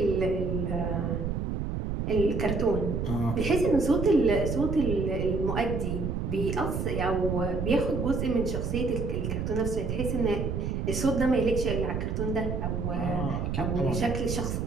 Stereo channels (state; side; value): noise; right; rumble, 2 dB below the sound